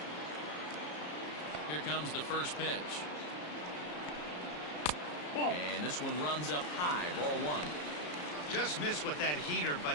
Here comes the first pitch. And this one runs up high, ball one. Just missed with that heater,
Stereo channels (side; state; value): right; late; 34 ms